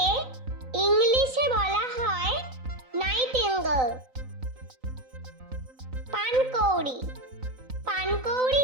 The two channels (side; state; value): left; late; 3.9 ms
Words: ইংলিশে বলা হয় নাইটিঙ্গেল। পানকৌড়ি,